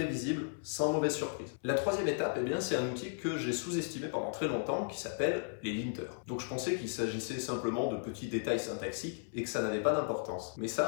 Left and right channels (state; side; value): silent; right; 54 dB below the other